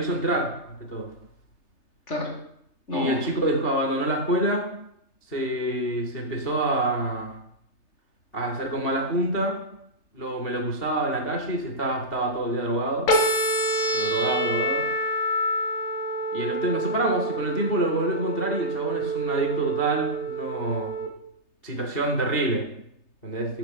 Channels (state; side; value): late; right; 3.3 ms